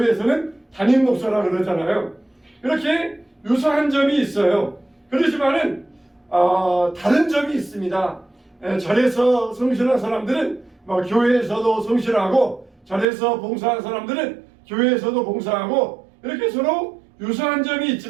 담임 목사라 그러잖아요. 이렇게 유사한 점이 있어요. 그렇지만은 다른 점이 있습니다. 절에서 성실한 사람들은 교회에서도 성실하고 절에서 봉사한 사람들은 교회에서도 봉사하고 이렇게 서로 유사한 점이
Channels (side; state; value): left; drops out; at 13.1 s